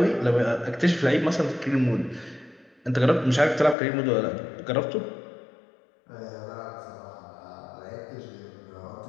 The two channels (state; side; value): drops out; right; at 3.8 s